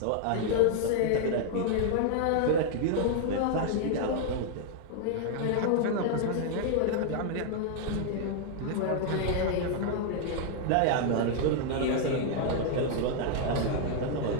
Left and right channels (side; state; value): both; different; correlation 0.00